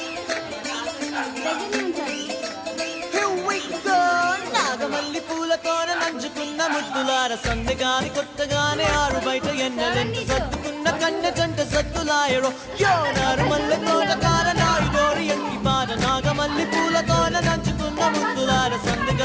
నాగమల్లి పూలతోన నంచుకున్న ముద్దులార సందెగాని కొత్తగానే ఆరు బయట ఎన్నెలెంట సత్తుకున్న కన్నె జంట సత్తులాయడో యోనారు మల్లె తోటకార నాయుడోరి ఎంటి పాట. నాగమల్లి పూలతోన నంచుకున్న ముద్దులార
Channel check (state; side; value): identical; both; correlation 1.00